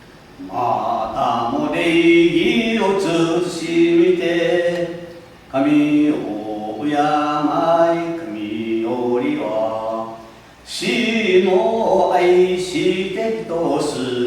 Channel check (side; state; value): both; identical; correlation 1.00